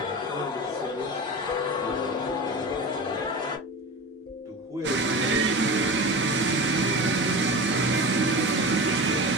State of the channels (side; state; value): both; normal; correlation 0.30